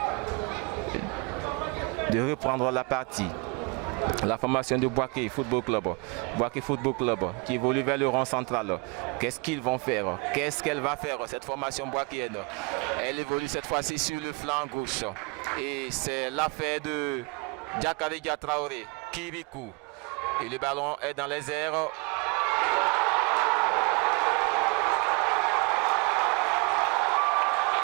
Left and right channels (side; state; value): left; quieter; 30.7 dB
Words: de reprendre la partie. La formation de Boaké Football Club. Boaké Football Club qui évolue vers le rond central. Qu'est-ce qu'ils vont faire? Qu'est-ce qu'elle va faire, cette formation boakéenne? Elle évolue cette fois-ci sur le flanc gauche. Et c'est l'affaire de Diakaridia Traoré, Kirikou. Et le ballon est dans les airs.